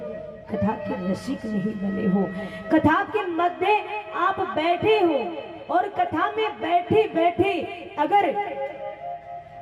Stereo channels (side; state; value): both; identical; correlation 1.00